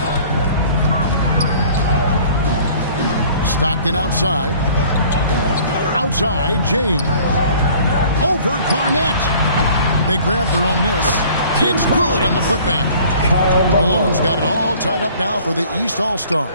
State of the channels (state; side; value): inverted; both; correlation -0.51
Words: Stockton outside. Outside, James. Over Garnett. They grab their own miss. It's good on the putback. Malone's got it all tied up now for the East All-Stars.